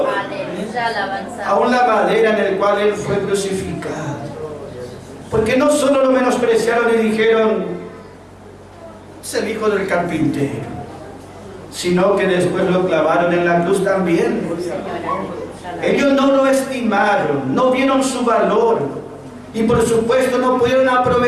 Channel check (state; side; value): identical; both; correlation 1.00